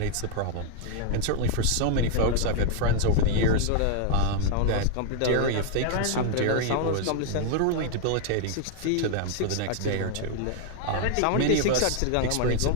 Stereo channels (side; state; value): both; different; correlation 0.00